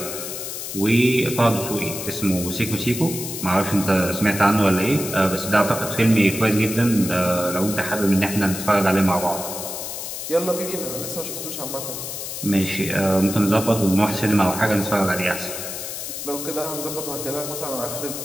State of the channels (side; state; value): left; noise; hiss, 7 dB below the sound